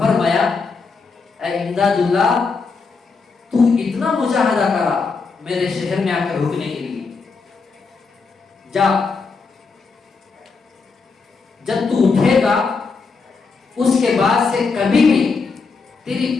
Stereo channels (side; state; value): right; quieter; 4.6 dB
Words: اے امداد اللہ، تو اتنا مجاہدہ کرا میرے شہر میں آ کر رکنے کے لیے، جا، جب تو اٹھے گا اس کے بعد سے کبھی بھی تیری